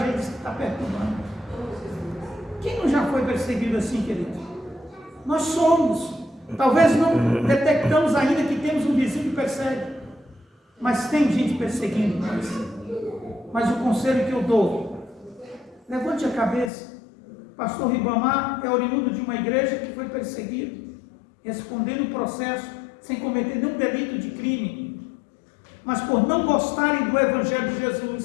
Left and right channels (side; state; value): right; drops out; at 16.7 s